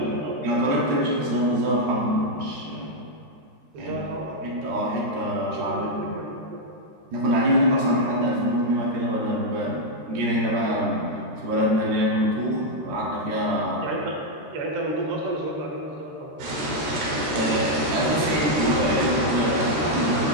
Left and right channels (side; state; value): left; late; 13 ms